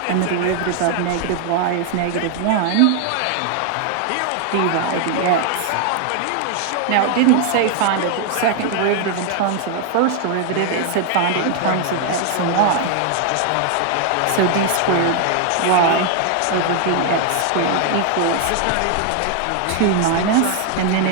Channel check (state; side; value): different; both; correlation 0.00